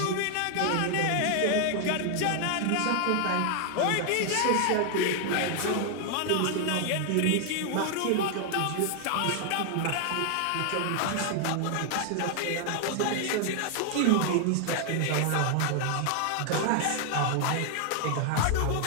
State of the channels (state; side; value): different; both; correlation 0.00